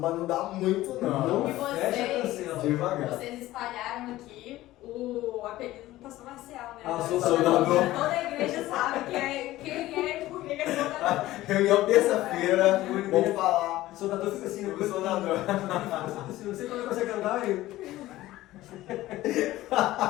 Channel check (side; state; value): right; quieter; 16.2 dB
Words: não dá muito não. E Fecha, cancela. Devagar. vocês espalharam aqui o apelido do pastor Marcial, né? soldador. Toda a igreja sabe quem é e por que é soldador. Reunião terça-feira, vamos falar. O soldador fica assim, O soldador. Não sei quando consegue andar aí.